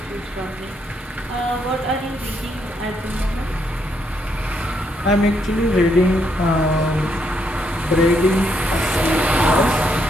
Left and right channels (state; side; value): normal; both; correlation 0.76